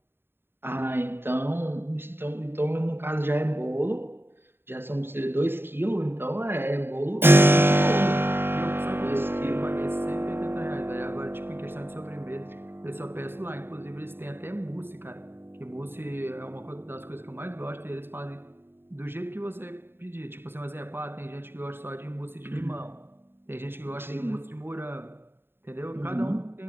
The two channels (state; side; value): late; left; 0.11 ms